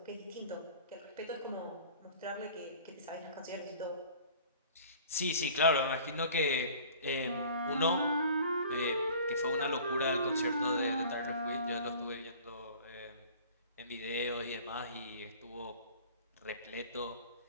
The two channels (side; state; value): both; inverted; correlation -0.46